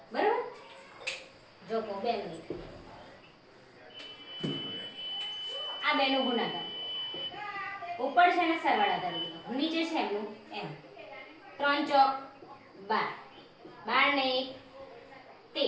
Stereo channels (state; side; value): identical; both; correlation 1.00